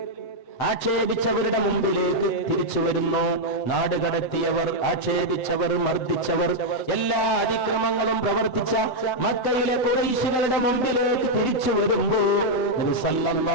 ആക്ഷേപിച്ചവരുടെ മുമ്പിലേക്ക് തിരിച്ചു വരുന്നു. നാടുകടത്തിയവർ, ആക്ഷേപിച്ചവർ, മർദ്ദിച്ചവർ, എല്ലാ അതിക്രമങ്ങളും പ്രവർത്തിച്ച മക്കയിലെ ഖുറൈശികളുടെ മുമ്പിലേക്ക് തിരിച്ചു വരുമ്പോൾ നബി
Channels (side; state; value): right; late; 7.8 ms